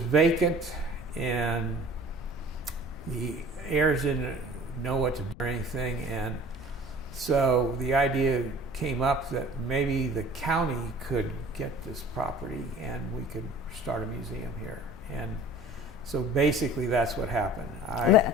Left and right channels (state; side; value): noise; left; rumble, 17 dB below the sound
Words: and the heirs didn't know what to do or anything, and so the idea came up that maybe the county could get this property and we could start a museum here. And so basically that's what happened.